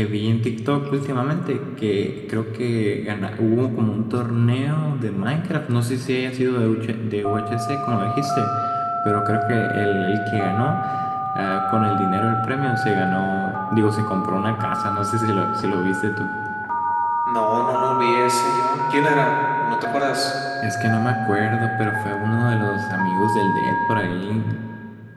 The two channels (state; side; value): identical; both; correlation 1.00